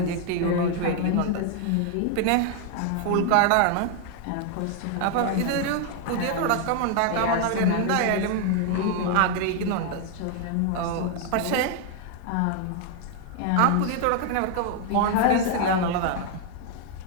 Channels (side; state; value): both; different; correlation 0.00